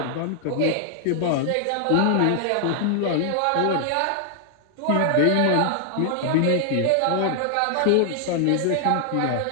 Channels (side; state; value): both; different; correlation 0.00